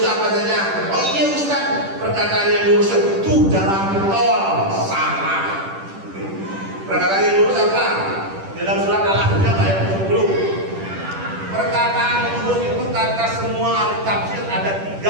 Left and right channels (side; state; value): left; late; 10 ms